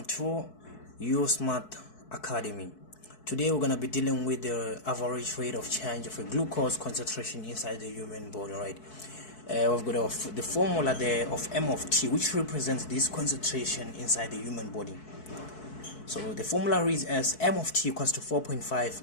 to USmart Academy. Today we're going to be dealing with the average rate of change of a glucose concentration inside the human body, right? We've got the formula there of M of T, which represents this concentration inside the human body. So the formula reads as M of T equals to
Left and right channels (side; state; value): right; late; 4.6 ms